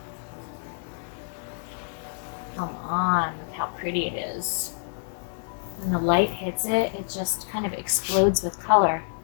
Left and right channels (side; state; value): right; silent; digital silence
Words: Come on, look how pretty it is. When the light hits it, it just kind of explodes with color.